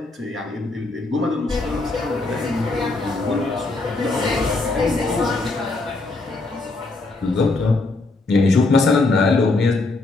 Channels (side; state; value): right; quieter; 3.3 dB